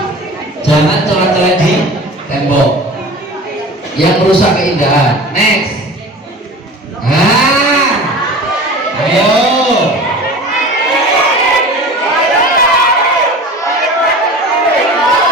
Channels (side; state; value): both; normal; correlation 0.37